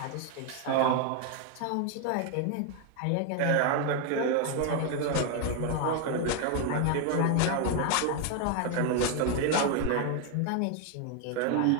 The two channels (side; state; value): both; different; correlation 0.01